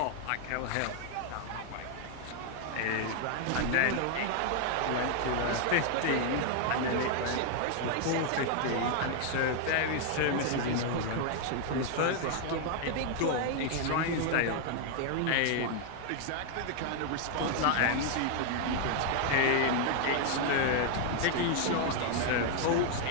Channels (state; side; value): different; both; correlation 0.00